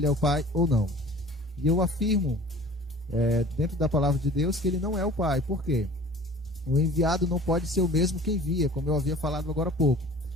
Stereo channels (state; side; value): normal; both; correlation 0.44